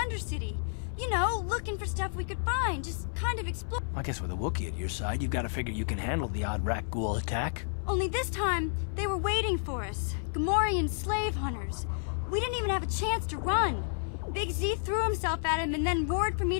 You know, looking for stuff we could find, just kind of explore. I guess with a Wookiee at your side, you've got to figure you can handle the odd Rakghoul attack. Only this time, they were waiting for us. Gamorrean slave hunters. We didn't even have a chance to run. Big Z threw himself at him and then roared for me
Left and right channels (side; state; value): right; silent; 56 dB below the other